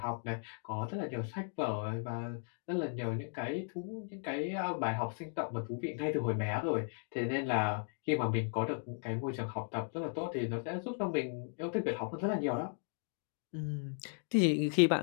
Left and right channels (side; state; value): right; silent; 54 dB below the other